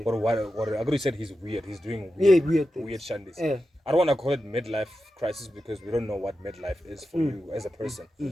Or what Agro said he's weird. He's doing weird shandis. Yeah. I don't want to call it midlife crisis because we don't know what midlife is for you as a person.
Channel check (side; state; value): both; normal; correlation 0.91